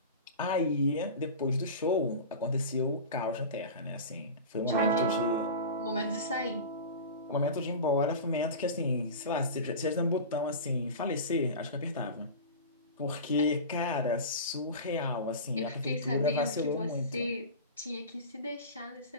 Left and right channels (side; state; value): both; inverted; correlation -0.30